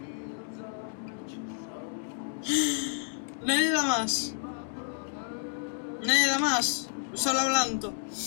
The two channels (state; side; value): silent; right; digital silence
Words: Nadie da más. Nadie da más. Solo hablando.